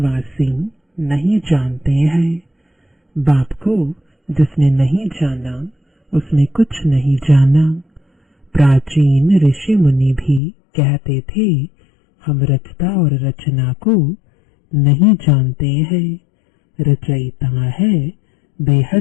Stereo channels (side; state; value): right; drops out; at 10.4 s